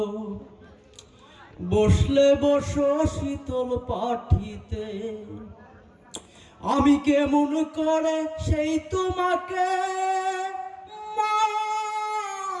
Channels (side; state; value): both; identical; correlation 1.00